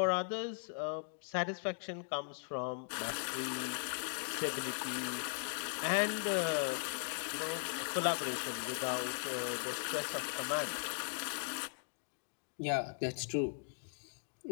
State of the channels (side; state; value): right; silent; digital silence